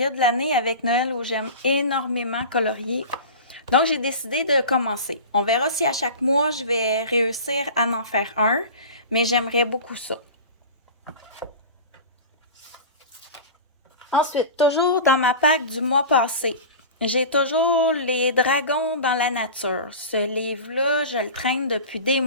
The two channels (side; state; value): both; inverted; correlation -0.32